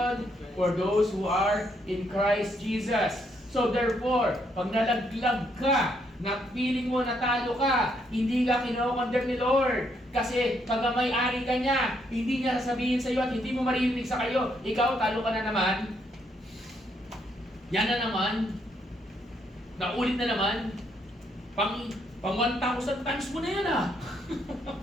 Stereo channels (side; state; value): both; normal; correlation 0.74